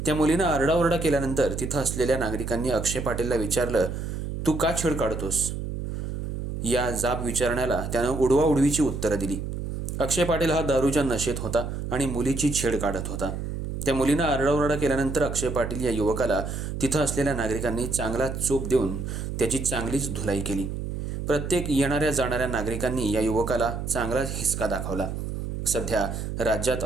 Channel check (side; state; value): right; noise; hum, 5 dB below the sound